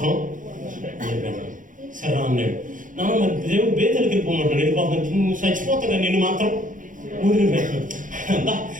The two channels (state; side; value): late; left; 0.38 ms